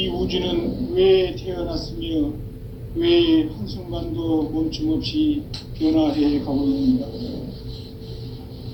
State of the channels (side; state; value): both; identical; correlation 1.00